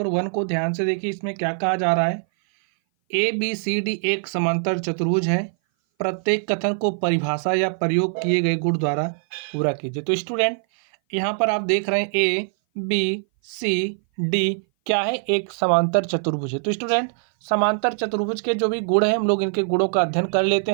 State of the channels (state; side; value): silent; left; 59 dB below the other